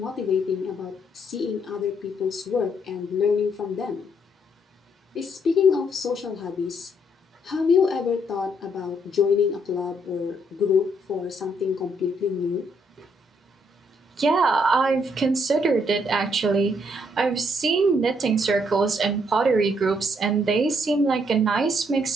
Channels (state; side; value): normal; both; correlation 0.71